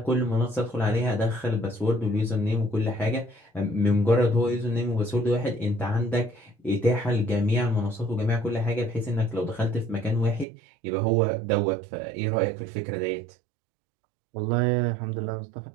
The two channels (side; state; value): left; drops out; at 10.5 s